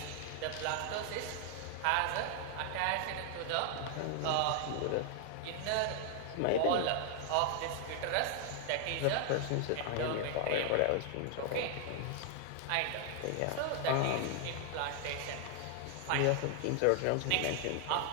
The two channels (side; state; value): both; different; correlation 0.00